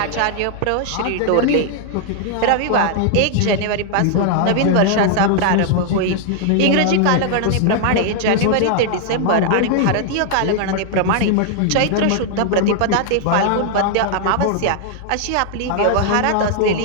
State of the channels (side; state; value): both; different; correlation -0.01